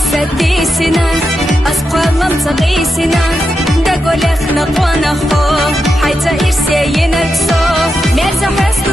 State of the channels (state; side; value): normal; both; correlation 0.87